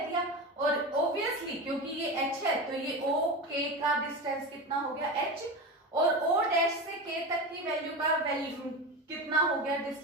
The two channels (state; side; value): normal; both; correlation 0.24